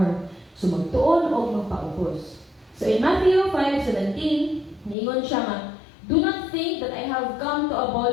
So magtuon o magpaubos. So in Matthew 5:17, ningon siya nga, do not think that I have come to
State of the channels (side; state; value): right; drops out; at 5.0 s